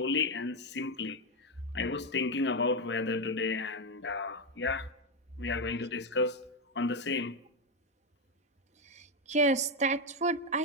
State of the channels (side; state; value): both; normal; correlation 0.07